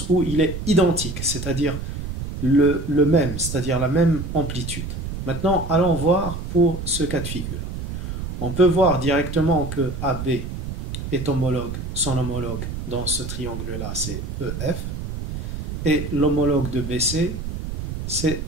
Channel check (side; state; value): right; noise; rumble, 5 dB below the sound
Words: où il est identique, c'est-à-dire le même, c'est-à-dire la même amplitude. Maintenant, allons voir pour ce cas de figure. On peut voir directement que AB est homologue, son homologue dans ce triangle-là, c'est EF, et l'homologue de BC c'est